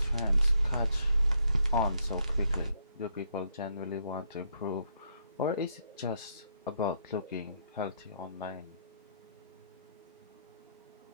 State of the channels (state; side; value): inverted; both; correlation -0.74